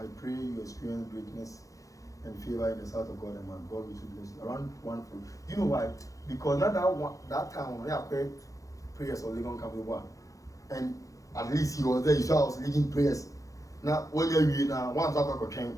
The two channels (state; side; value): late; right; 0.16 ms